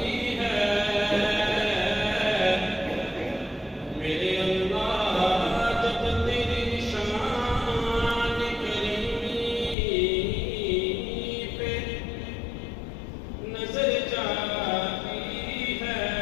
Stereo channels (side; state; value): right; drops out; at 9.8 s